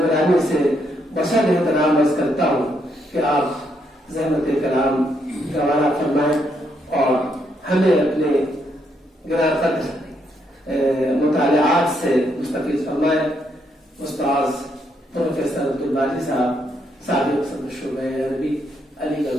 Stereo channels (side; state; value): both; normal; correlation 0.76